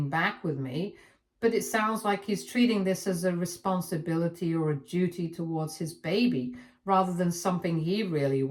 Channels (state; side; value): identical; both; correlation 1.00